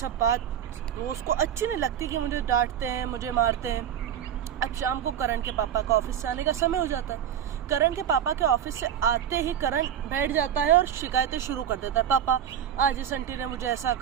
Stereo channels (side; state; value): left; quieter; 9.5 dB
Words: बात वो उसको अच्छी नहीं लगती कि मुझे डांटते हैं, मुझे मारते हैं। अब शाम को करण के पापा का ऑफिस से आने का समय हो जाता है। करण के पापा के ऑफिस से आते ही करण बैठ जाता है और शिकायतें शुरू कर देता है। पापा, आज इस आंटी ने मुझे ऐसा